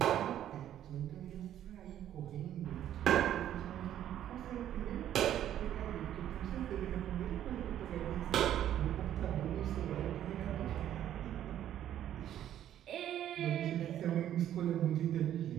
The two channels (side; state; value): left; quieter; 11.2 dB